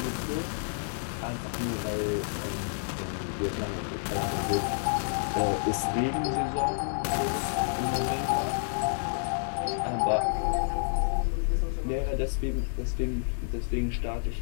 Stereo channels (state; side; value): silent; right; digital silence